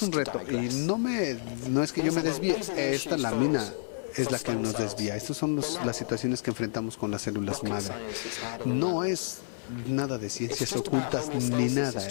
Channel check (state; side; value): silent; right; digital silence